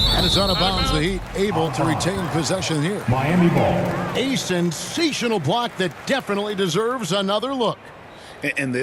And it's out of bounds. The Heat able to retain possession here. Miami ball. A sensational block that definitely deserves another look. And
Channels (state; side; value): identical; both; correlation 1.00